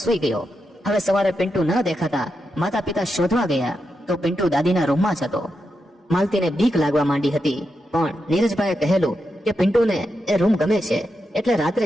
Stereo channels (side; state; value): both; normal; correlation 0.86